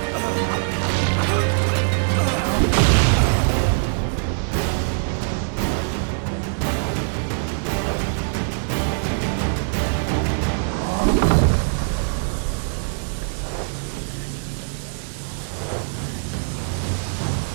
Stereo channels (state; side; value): silent; left; digital silence